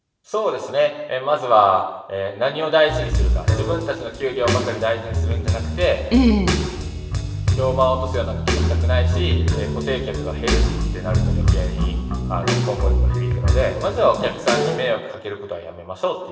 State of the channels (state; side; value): identical; both; correlation 1.00